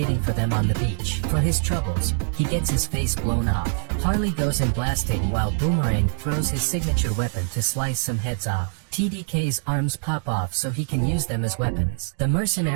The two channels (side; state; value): left; silent; digital silence